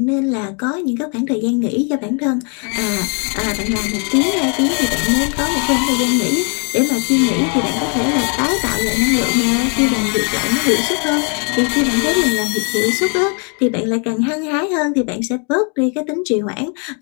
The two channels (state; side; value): quieter; right; 38.0 dB